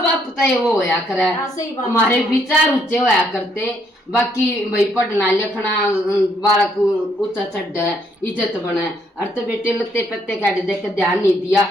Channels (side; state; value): both; normal; correlation 0.70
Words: बाप तय वो होया करे हाँ, सही बात हमारे है। विचार ऊंचे होया करते बाकी भाई पढ़ना लिखना बालक ऊंचा चढ़ है इज्जत बने। और तो बेटे लत्ते पत्ते काटे देख के ध्यान नहीं दिया